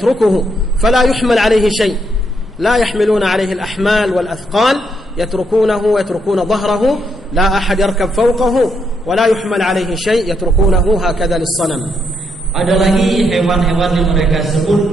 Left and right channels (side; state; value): both; normal; correlation 0.77